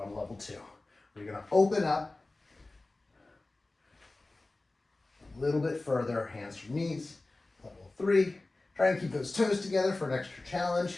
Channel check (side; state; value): right; quieter; 3.1 dB